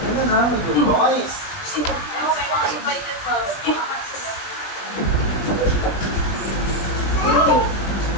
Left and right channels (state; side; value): late; right; 20 ms